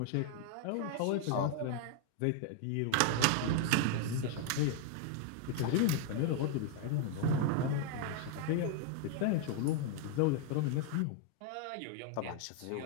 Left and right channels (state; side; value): different; both; correlation 0.00